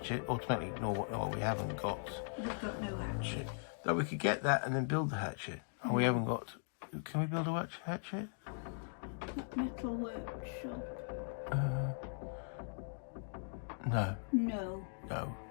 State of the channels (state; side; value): silent; right; digital silence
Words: automatically ignore what we haven't got. We've got no hatchet. Though we could get that and then build the hatchet. And we haven't got... Can we build a hatchet? Metal workshop. No. No. No.